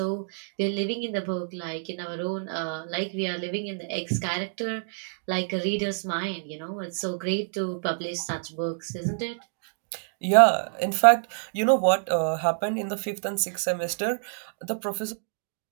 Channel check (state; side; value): silent; left; digital silence